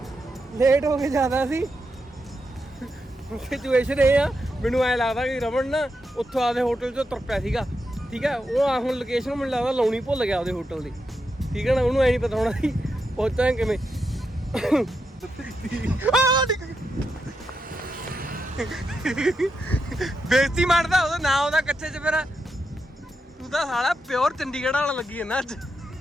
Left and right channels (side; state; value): both; normal; correlation 0.85